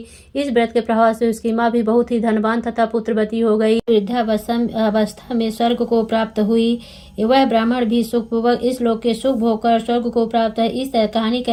इस व्रत के प्रभाव से उसकी माँ भी बहुत ही धनवान तथा पुत्रवती हो गई। वृद्धावस्था में स्वर्ग को प्राप्त हुई। वह ब्राह्मण भी सुखपूर्वक इस लोक के सुख भोग कर स्वर्ग को प्राप्त है। इस कहानी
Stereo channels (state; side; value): identical; both; correlation 1.00